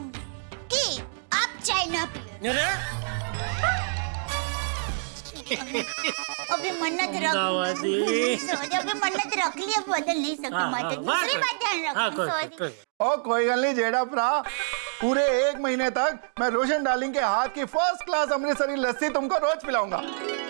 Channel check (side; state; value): left; silent; digital silence